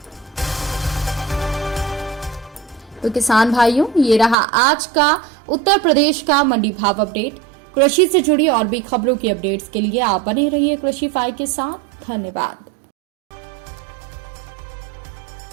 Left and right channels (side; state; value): left; drops out; at 4.4 s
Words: तो किसान भाइयों, ये रहा आज का उत्तर प्रदेश का मंडी भाव अपडेट। कृषि से जुड़ी और भी खबरों की अपडेट्स के लिए आप बने रहिए कृषिफाई के साथ। धन्यवाद।